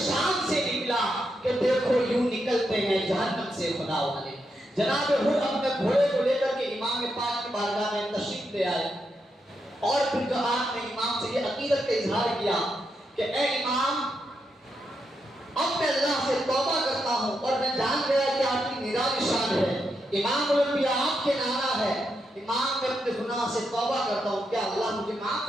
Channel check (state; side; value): normal; both; correlation 0.83